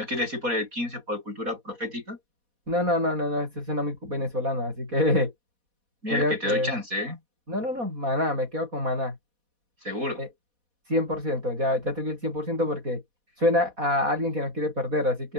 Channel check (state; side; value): late; left; 4.1 ms